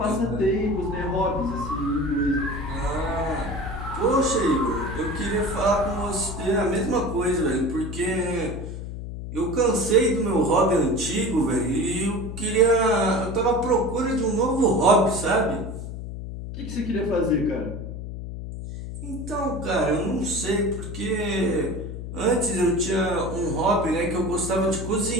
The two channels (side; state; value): left; noise; hum, 8 dB below the sound